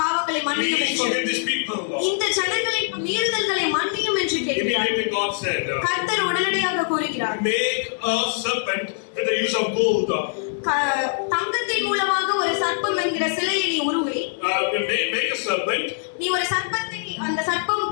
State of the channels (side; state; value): right; silent; digital silence